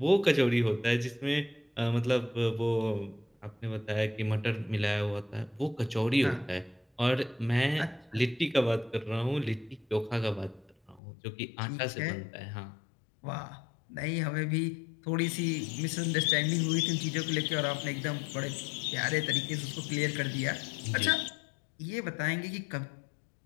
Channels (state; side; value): drops out; right; at 11.0 s